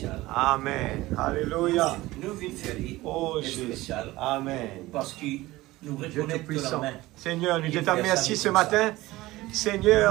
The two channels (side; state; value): left; quieter; 18.5 dB